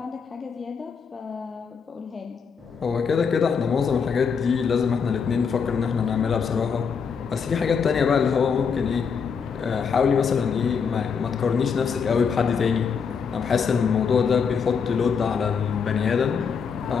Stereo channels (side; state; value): right; quieter; 6.2 dB